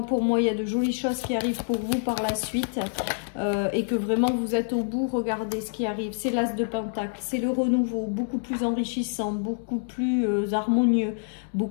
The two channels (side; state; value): right; silent; 60 dB below the other